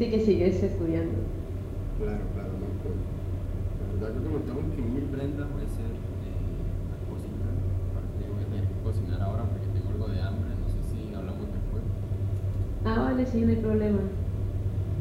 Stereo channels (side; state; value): both; identical; correlation 1.00